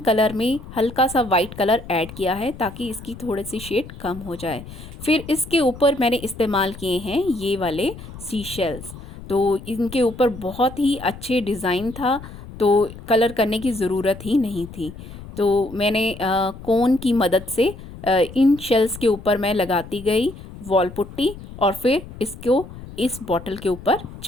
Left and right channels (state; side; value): noise; left; rumble, 15 dB below the sound